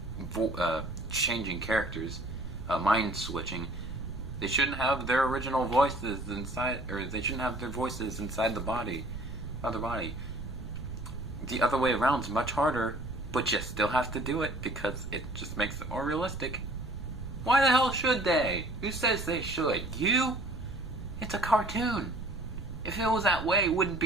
changing characters, mind switching, they shouldn't have their original voices inside, or they shouldn't have their voices inside the body, other body. The other way around is much harder, but you still have to do it because it just makes it more realistic. Why the hell should they? Who says they should? You? It's a cartoon. If it was that way, it wouldn't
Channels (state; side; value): noise; right; rumble, 9 dB below the sound